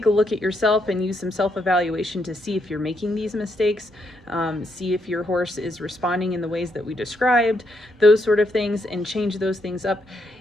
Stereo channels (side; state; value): both; normal; correlation 0.77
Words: a look at yourself and use some self-evaluation to see if you're making these mistakes, see if your horse is responding in the ways that we described, those sort of things, and change those things up.